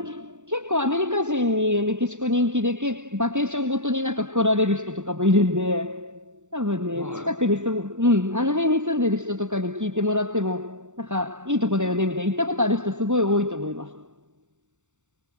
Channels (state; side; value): late; left; 0.84 ms